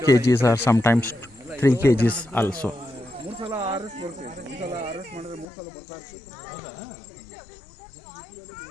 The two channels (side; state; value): right; drops out; at 5.5 s